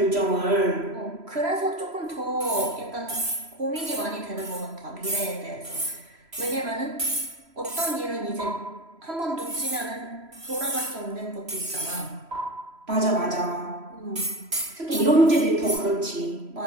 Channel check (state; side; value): late; left; 3.0 ms